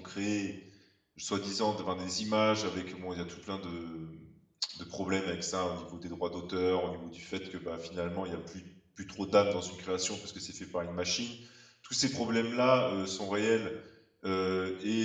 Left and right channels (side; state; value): both; identical; correlation 1.00